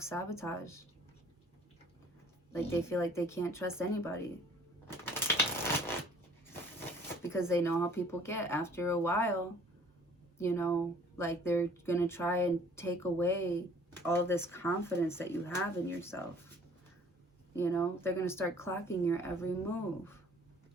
Like they feel like they can't trust anybody. Because they know how people get. After a while, you know, like they're going to try and take away all this confidence that you have in yourself. You know, they're going to start clocking your every move.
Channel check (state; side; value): normal; both; correlation 0.54